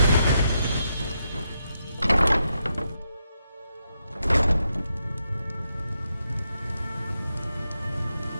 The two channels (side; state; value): both; inverted; correlation -0.82